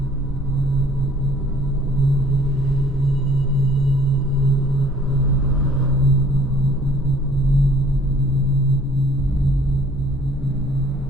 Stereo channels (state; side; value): normal; both; correlation 0.55